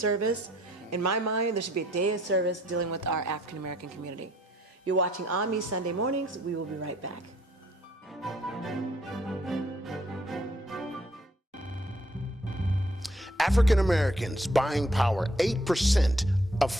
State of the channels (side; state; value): both; normal; correlation 0.65